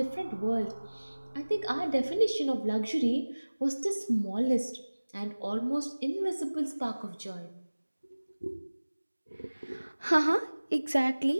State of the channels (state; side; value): inverted; both; correlation -1.00